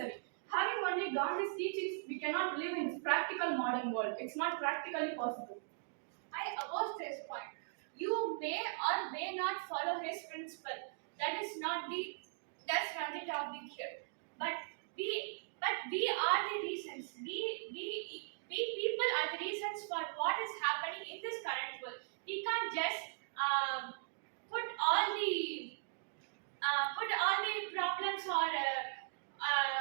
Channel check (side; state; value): left; silent; digital silence